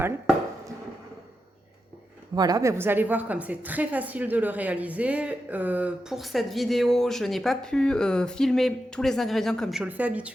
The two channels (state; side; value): normal; both; correlation 0.88